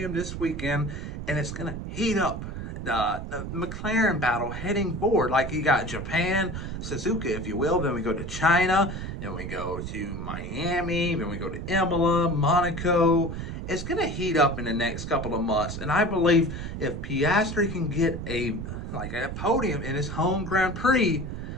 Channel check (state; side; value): noise; right; rumble, 6 dB below the sound